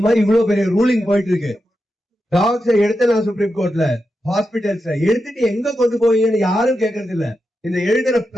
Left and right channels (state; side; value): normal; both; correlation 0.88